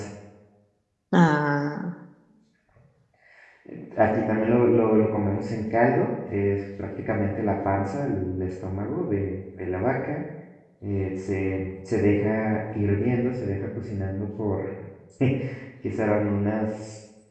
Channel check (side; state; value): both; identical; correlation 1.00